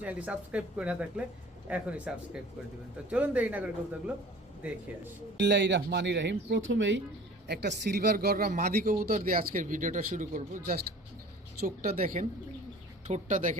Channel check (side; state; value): both; normal; correlation 0.45